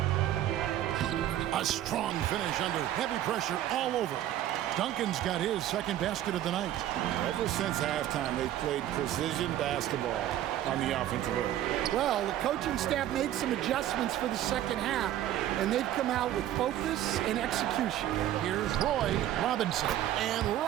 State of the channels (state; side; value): quieter; left; 12.5 dB